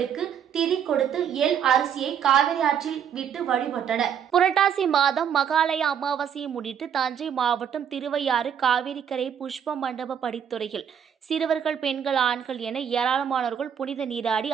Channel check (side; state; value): left; quieter; 8.3 dB